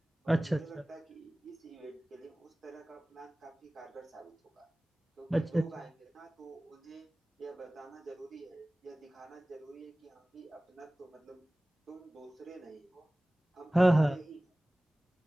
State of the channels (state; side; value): normal; both; correlation 0.98